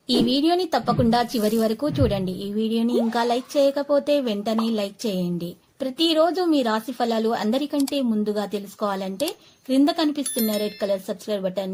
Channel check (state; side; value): identical; both; correlation 1.00